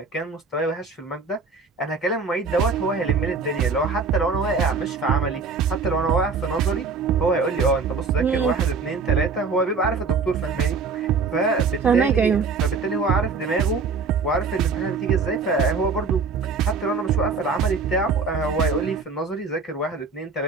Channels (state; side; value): quieter; left; 4.6 dB